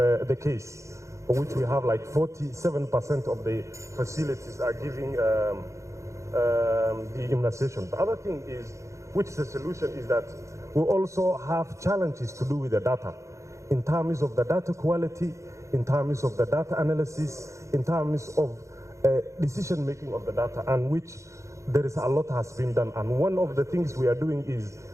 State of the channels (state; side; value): late; left; 0.15 ms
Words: case, for which we have like 47% of the facilities are giving the immunization. The other thing is, which is the solution, is that we also have challenges to do with the data, in terms of the data quality, in terms of the data analysis, in terms of decision making of the data, and which there is a lot has been done. And one of the things we are doing is,